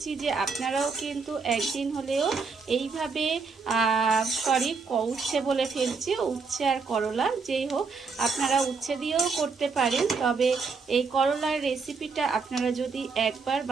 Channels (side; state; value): left; quieter; 4.8 dB